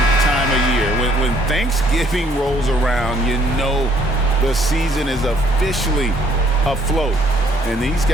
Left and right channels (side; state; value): both; normal; correlation 0.64